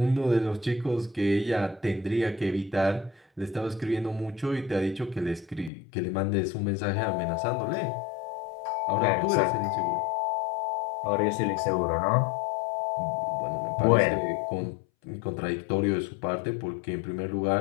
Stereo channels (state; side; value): drops out; right; at 5.7 s